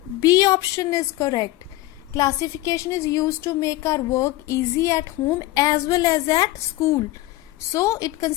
B option is correct. Classification is used to make our work easy at home as well as at school. So it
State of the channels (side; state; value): right; quieter; 17.2 dB